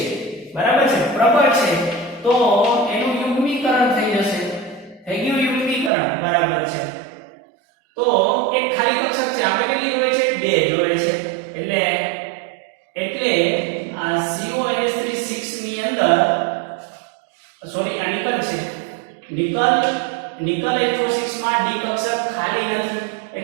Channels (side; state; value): left; drops out; at 5.9 s